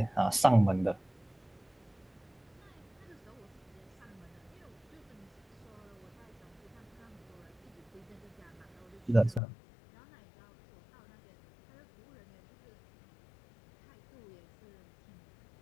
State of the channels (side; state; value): right; drops out; at 9.4 s